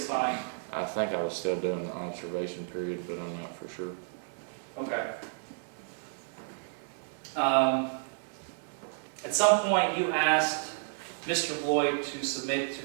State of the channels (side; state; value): left; silent; digital silence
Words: fine? I think I was still doing the observation period, but I'm not for sure. Okay. At some point, you asked Mr. Boyd to submit